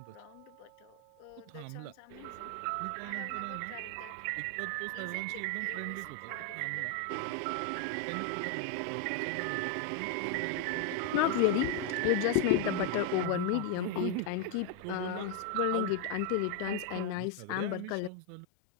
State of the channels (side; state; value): both; different; correlation 0.01